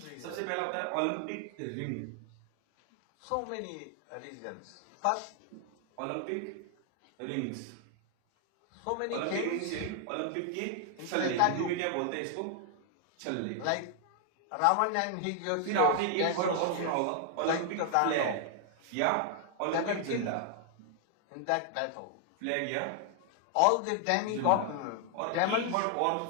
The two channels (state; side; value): different; both; correlation 0.00